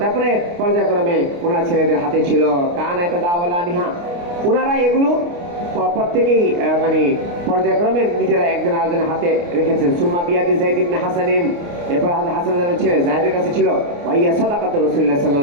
তারপরে পর্যায়ক্রমে ওনার ছেলেদের হাতে ছিল। কানা ইয়াতাদাওয়ালানিহা, ওনারা এগুলো প্রত্যেকেই মানে পর্যায়ক্রমে নিজেরা একজন আরেকজনের হাতে রেখেছেন। সুম্মা বিয়াদি যায়েদ ইবনে হাসানিন, এরপর হাসানের ছেলে যায়েদের কাছে ছিল। ওয়াইয়া সাদাকাতু রাসূলুল্লাহ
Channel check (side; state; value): left; late; 29 ms